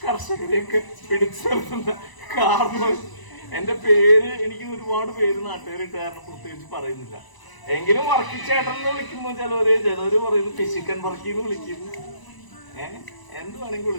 കർഷകരെയൊക്കെ പിടിച്ചു നിർത്തുന്ന കാരണം. എന്റെ പേര് എനിക്ക് ഒരുപാട് പേര് നാട്ടുകാരിട്ട് കാരണം പ്രത്യേകിച്ച് പറയുന്നില്ല. എങ്കിലും വർക്കിച്ചേട്ടൻ എന്ന് വിളിക്കുമ്പോ ചിലവര് പറയുന്നു ഫിസിക്കൻ വർക്കിന്ന് വിളിക്കുന്നു. എന്ത് വേണമെങ്കിൽ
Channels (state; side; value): late; right; 1.0 ms